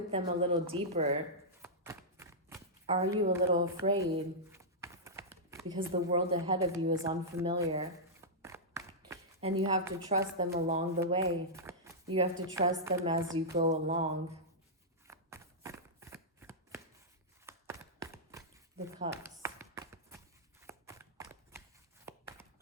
them a little deeper, are you a little afraid? Because the world ahead of you is unfamiliar. And you have to trust them along the way. You have to trust them as you go along. The Cups.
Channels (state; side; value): normal; both; correlation -0.11